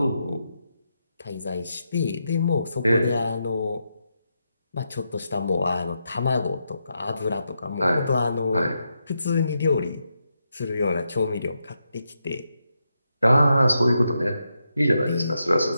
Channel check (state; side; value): inverted; both; correlation -0.84